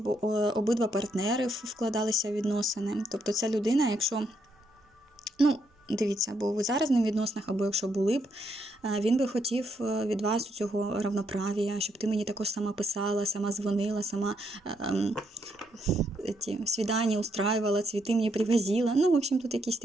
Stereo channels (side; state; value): both; normal; correlation 0.76